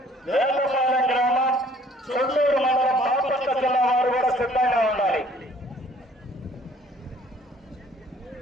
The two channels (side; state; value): both; normal; correlation 0.57